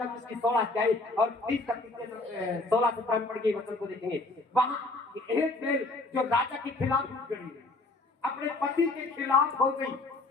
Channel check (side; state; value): right; quieter; 3.2 dB